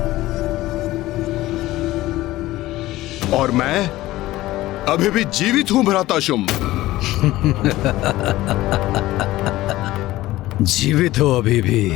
और मैं अभी भी जीवित हूं भ्राता शुंभ। जीवित हो अभी भी,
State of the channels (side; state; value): right; quieter; 16.8 dB